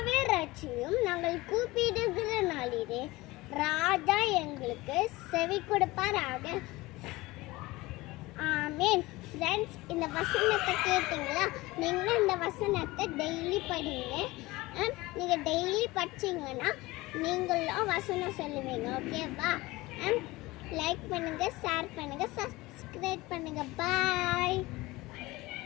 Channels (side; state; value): right; quieter; 20.5 dB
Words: ரட்சியும், நாங்கள் கூப்பிடுகிற நாளிலே ராஜா எங்களுக்கு செவி கொடுப்பாராக. ஆமேன். ஃப்ரெண்ட்ஸ், இந்த வசனத்தை கேட்டீங்களா? நீங்கள் இந்த வசனத்தை டெய்லி படிங்க. நீங்கள் டெய்லி படிச்சிங்கன்னா நீங்களும் வசனம் சொல்லுவீங்க, ஓகேவா? லைக் பண்ணுங்கள், ஷேர் பண்ணுங்கள், சப்ஸ்கிரைப் பண்ணுங்கள். பாய்.